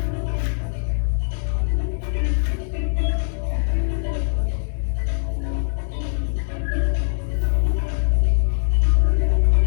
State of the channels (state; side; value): silent; right; digital silence